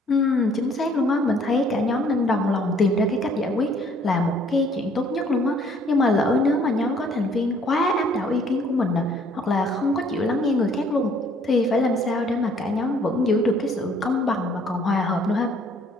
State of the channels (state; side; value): normal; both; correlation 0.61